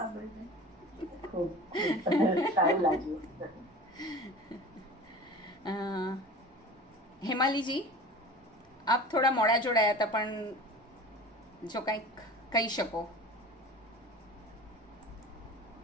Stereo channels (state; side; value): normal; both; correlation 0.38